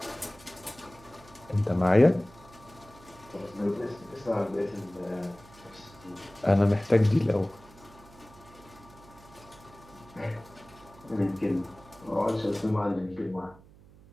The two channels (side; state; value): right; noise; hum, 23 dB below the sound